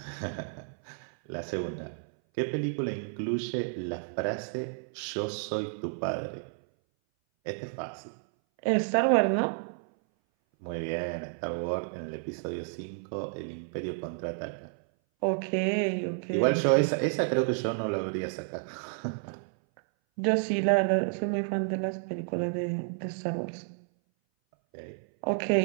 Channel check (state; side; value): silent; left; 57 dB below the other